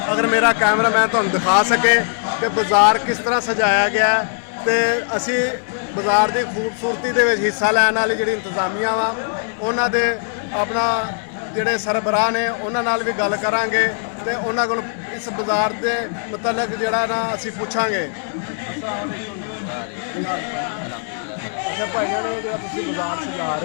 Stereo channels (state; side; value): silent; right; 66 dB below the other